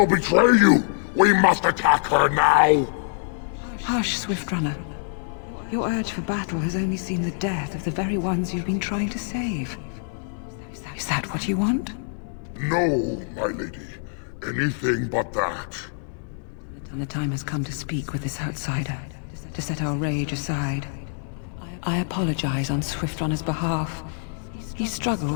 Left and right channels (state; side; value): silent; right; digital silence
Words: betray you. We must attack her now. Hush, Swiftrunner. Your urge for battle has only seen the death of the very ones you've been trying to save. Is that what you want? No, my lady. Anything but that. And the time has come to speak with this outsider, to set our rage aside. I apologize on Swiftrunner's behalf. He